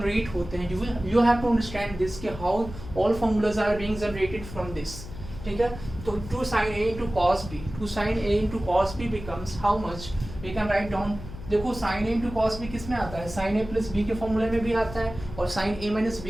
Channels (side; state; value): left; noise; hum, 12 dB below the sound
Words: होते हैं, you have to understand this कि how all formulas are being generated from this. ठीक है, तो 2 sin A into cos B, 2 sin A into cos B becomes how much, we can write down. देखो sin A into cos B किस में आता है, sin A plus B के फॉर्मूले में भी आता है और sin A minus